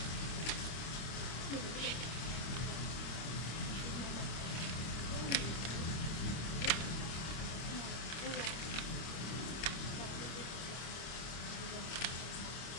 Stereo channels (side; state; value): right; late; 25 ms